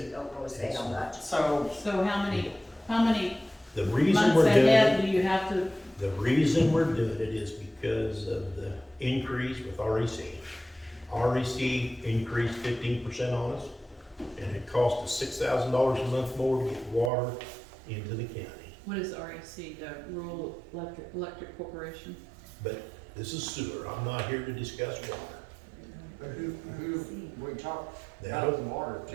So, So how many The reason months we're doing ahead it, do you have to, the reason we're doing it is because of the increase with REC. REC increased 15% on us, and it cost us $6,000 a month more to get water into the county. what is REC, the Rural Electric Corporation? But this is sewer, I'm not here to discuss water. who, we talked That'll, about the water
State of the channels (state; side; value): drops out; left; at 17.1 s